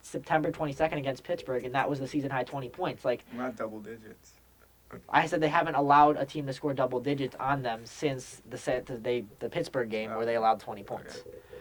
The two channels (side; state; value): both; identical; correlation 1.00